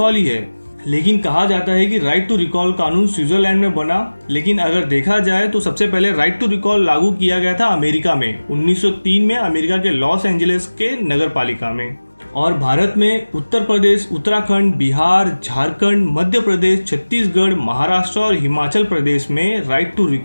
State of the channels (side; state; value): both; inverted; correlation -1.00